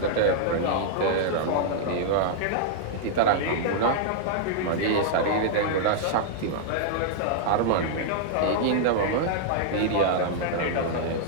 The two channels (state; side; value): different; both; correlation -0.01